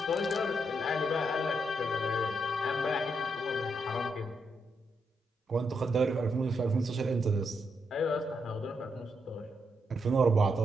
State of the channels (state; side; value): normal; both; correlation 0.80